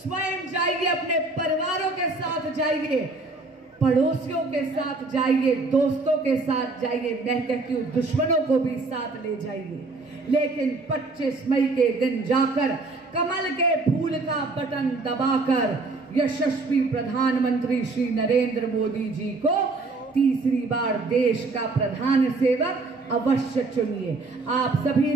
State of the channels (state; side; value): quieter; left; 3.5 dB